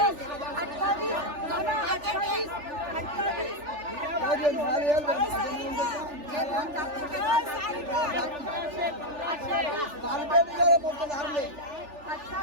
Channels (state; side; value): late; left; 3.4 ms